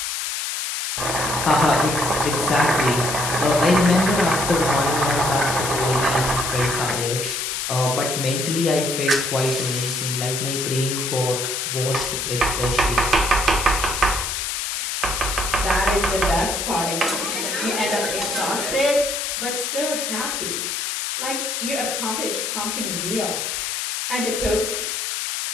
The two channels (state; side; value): noise; left; hiss, 2 dB below the sound